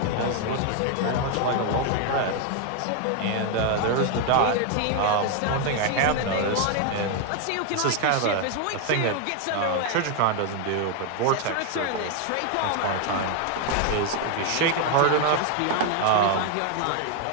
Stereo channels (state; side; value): different; both; correlation 0.00